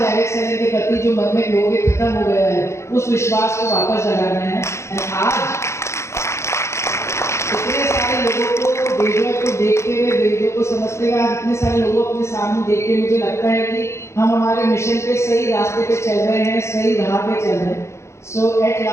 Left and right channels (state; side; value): late; right; 0.13 ms